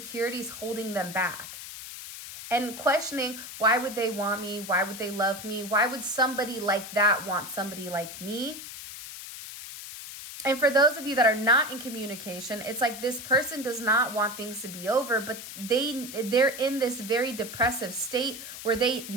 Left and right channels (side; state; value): left; noise; hiss, 11 dB below the sound